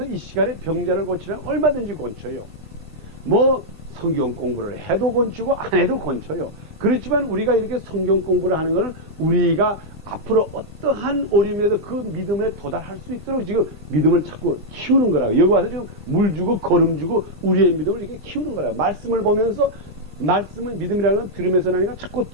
이 시간에 병자를 고치면 얼마든지 고쳐요. 뭐 성경 공부를 해도 고치고 안 해도 고쳐요. 그렇지만 우리가 이렇게 성경 공부를 하는 것은 우리가 앞으로 어떠한 어려움에도 그 믿음에 도달할 수 있도록 지금 믿음을 자꾸 키우는 거라고. 여기 와서 지금 물 주고 걸음 주고 우리의 믿음을 이렇게 키우는 거라고. 말씀을 보면서 말씀은 믿음이라는 건 들으면서 나니까 자꾸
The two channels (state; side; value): late; left; 20 ms